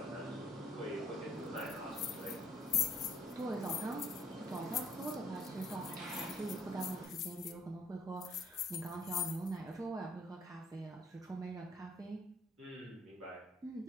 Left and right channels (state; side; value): normal; both; correlation 0.64